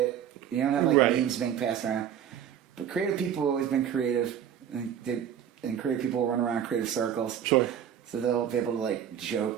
you don't have memes being passed around. But creative people have always been creative, and creative people run around creative circles. Sure. So they'll be able to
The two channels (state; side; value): quieter; left; 9.3 dB